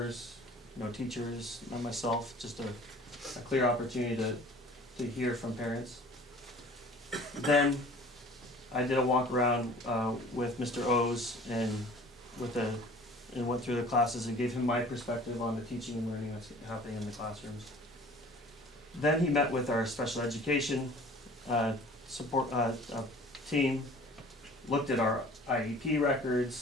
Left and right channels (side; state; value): both; normal; correlation 0.47